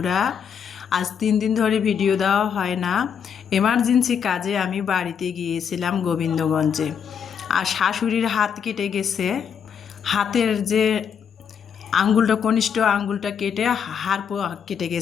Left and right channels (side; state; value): right; quieter; 7.4 dB